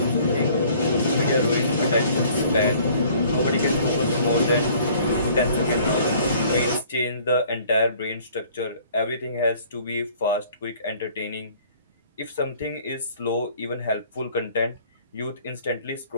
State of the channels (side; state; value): both; inverted; correlation -0.54